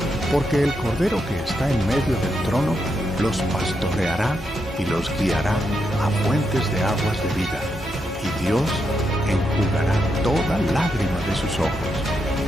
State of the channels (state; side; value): normal; both; correlation 0.82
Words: Porque el Cordero que está en medio del trono los pastoreará y los guiará a fuentes de aguas de vida, y Dios enjugará toda lágrima de sus ojos.